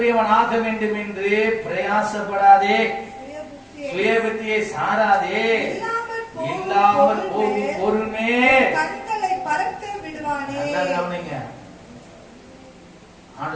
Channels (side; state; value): both; identical; correlation 1.00